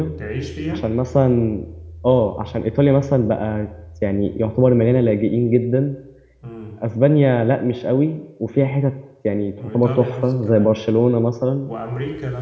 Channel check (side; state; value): both; identical; correlation 1.00